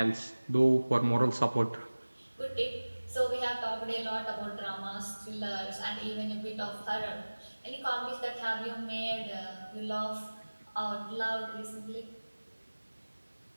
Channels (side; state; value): both; inverted; correlation -1.00